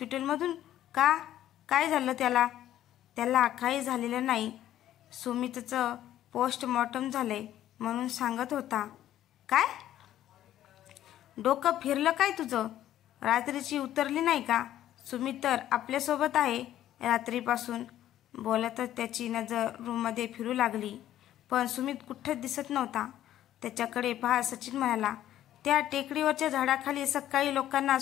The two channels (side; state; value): right; quieter; 12.4 dB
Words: का? काय झालं त्याला? त्याला काही झालेलं नाही. सुमितचं पोस्टमॉर्टम झालंय म्हणून सांगत होता. काय? डोकं फिरलं काय तुझं? रात्रीची उतरली नाही का? सुमित तर आपल्यासोबत आहे रात्रीपासून. बोलतच त्याची नजर रूममध्ये फिरू लागली, पण सुमित कुठंच दिसत नव्हता. त्याच्याकडे पाहत सचिन म्हणाला, त्या टेकडीवरच्या झाडाखाली सकाळी लोकांना